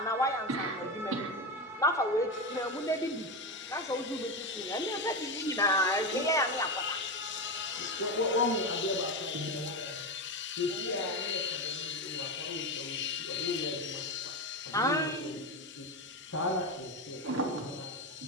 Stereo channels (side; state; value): both; normal; correlation 0.16